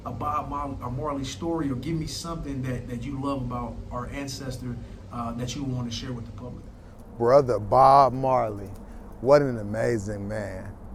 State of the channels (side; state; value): both; identical; correlation 1.00